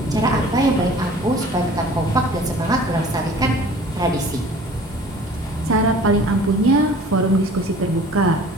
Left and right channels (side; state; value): both; normal; correlation 0.47